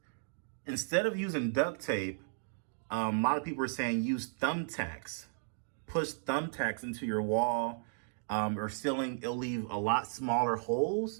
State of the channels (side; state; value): left; silent; digital silence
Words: Instead of using duct tape, a lot of people are saying use thumbtacks. Push thumbtacks into your wall or ceiling. It'll leave a lot smaller